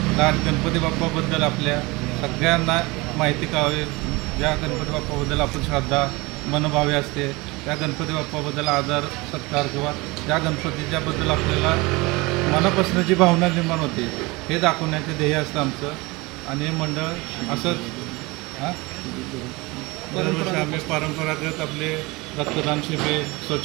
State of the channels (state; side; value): quieter; left; 23.8 dB